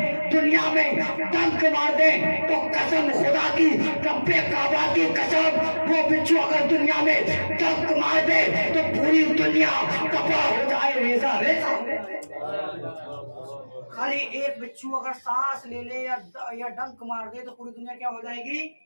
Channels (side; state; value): both; inverted; correlation -1.00